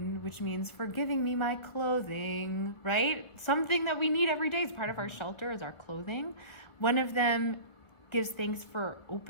which means for giving me my clothing, right? Something that we need every day as part of our shelter is our clothing. One of them gives thanks for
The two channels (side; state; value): right; late; 1.5 ms